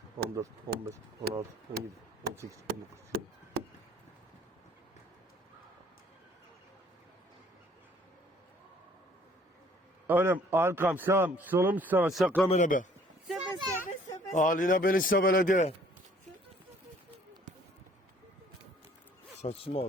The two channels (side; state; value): both; normal; correlation 0.58